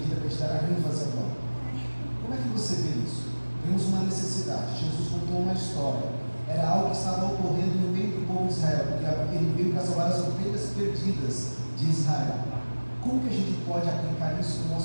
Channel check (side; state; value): both; inverted; correlation -1.00